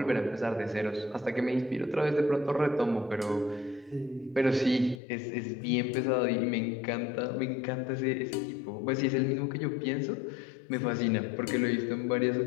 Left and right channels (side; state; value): right; drops out; at 5.0 s